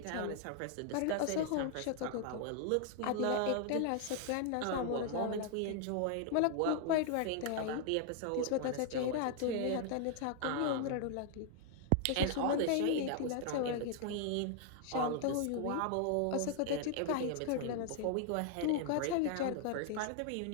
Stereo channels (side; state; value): both; different; correlation 0.00